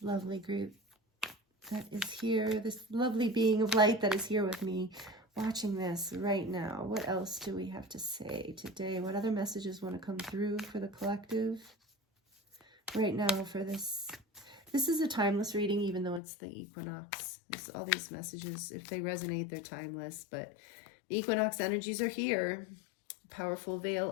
lovely group that is here, this lovely being of light that is here with me, watching this right now? What else do we have to say today? What other messages want to come through for the collective right now for this? This is a timeless reading, even though it's the equinox. All these messages, if they resonate, they're timeless, but the equinox energies are here. Powerful veil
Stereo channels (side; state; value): right; drops out; at 16.2 s